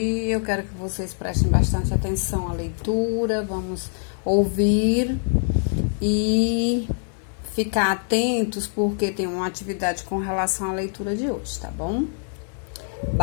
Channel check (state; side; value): silent; right; 60 dB below the other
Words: Eu quero que vocês prestem bastante atenção à leitura. Vamos ouvir e ficar atentos porque tem uma atividade com relação à leitura de hoje, tá bom?